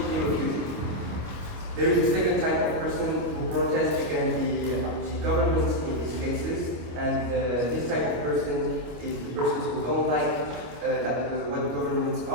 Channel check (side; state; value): left; late; 25 ms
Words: refuse it. There is a second type of person who protests against the government in these cases, and this type of person is the persons who don't like what the government